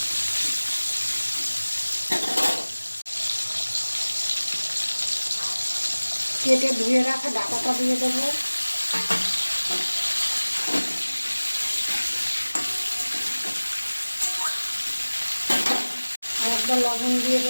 কেটে ধুয়ে রাখা ডাঁটাটা দিয়ে দেবো। আর একবার লবণ দিয়ে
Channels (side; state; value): both; inverted; correlation -1.00